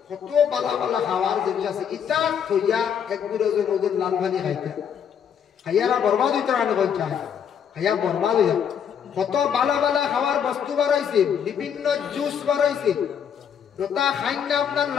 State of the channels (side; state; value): right; quieter; 7.9 dB